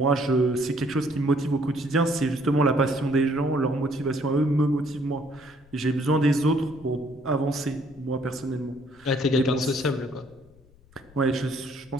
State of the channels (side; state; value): left; noise; rumble, 26 dB below the sound